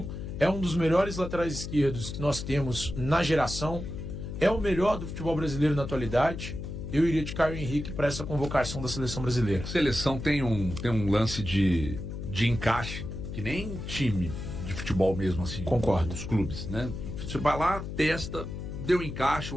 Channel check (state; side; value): noise; left; hum, 7 dB below the sound